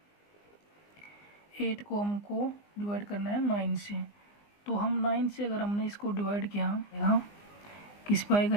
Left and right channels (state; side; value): late; right; 20 ms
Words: 8 को हमको डिवाइड करना है 9 से। तो हम 9 से अगर हमने इसको डिवाइड किया, यहाँ किस पे आएगा